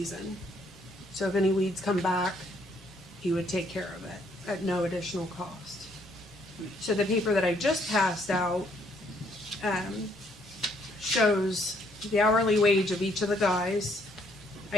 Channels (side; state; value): both; normal; correlation 0.68